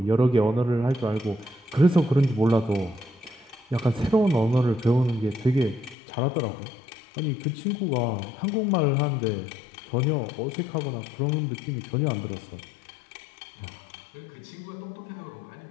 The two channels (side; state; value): right; drops out; at 6.0 s